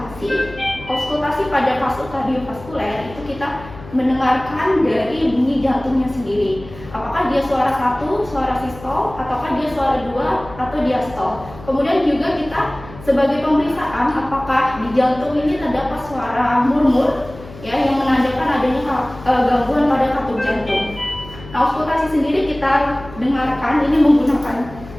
Auskultasi pada kasus kardiovaskuler itu kita mendengarkan dari bunyi jantungnya sendiri. Apakah dia suara 1, suara sistol, ataukah dia suara 2 atau diastol. Kemudian juga kita sebagai pemeriksaan apakah di jantung ini terdapat suara murmur ya yang menandakan adanya gangguan pada katup jantung. Nah, auskultasi sendiri kita dengarkan ini menggunakan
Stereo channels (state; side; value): noise; left; hum, 16 dB below the sound